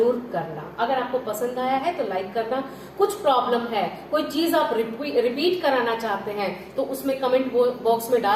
करना। अगर आपको पसंद आया है तो लाइक करना। कुछ प्रॉब्लम है, कोई चीज आप रिपीट कराना चाहते हैं तो उसमें कमेंट बॉक्स में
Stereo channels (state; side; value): identical; both; correlation 1.00